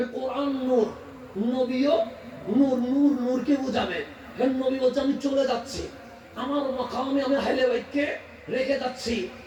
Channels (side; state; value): both; identical; correlation 1.00